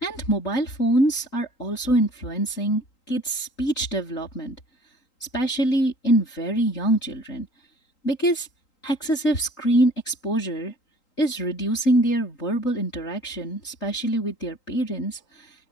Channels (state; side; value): late; right; 3.8 ms